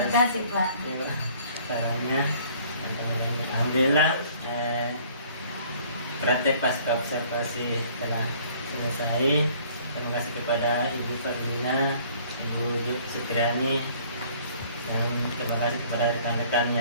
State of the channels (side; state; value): both; inverted; correlation -0.56